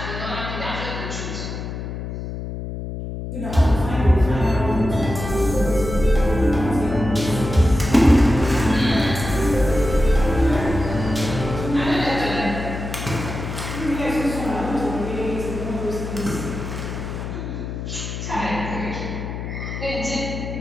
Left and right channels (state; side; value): noise; left; hum, 6 dB below the sound